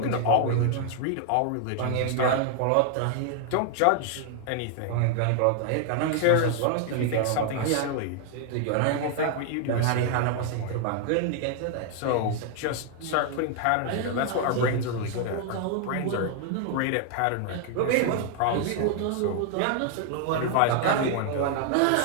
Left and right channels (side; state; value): both; different; correlation 0.00